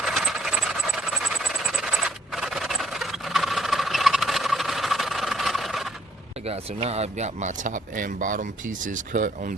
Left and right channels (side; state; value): both; normal; correlation 0.66